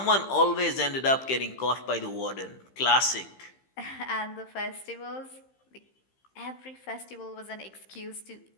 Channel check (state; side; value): late; right; 15 ms